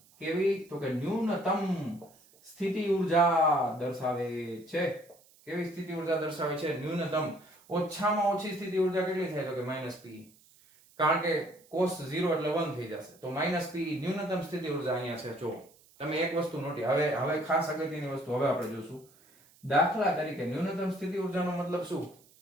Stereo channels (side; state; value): right; noise; hiss, 28 dB below the sound